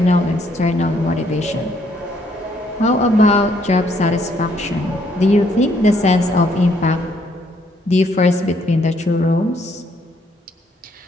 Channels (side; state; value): both; normal; correlation 0.69